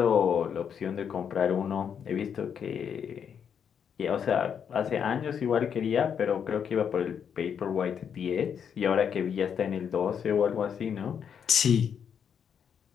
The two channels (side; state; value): right; quieter; 7.7 dB